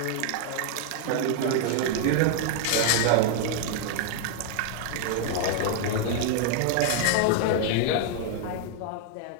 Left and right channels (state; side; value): different; both; correlation 0.00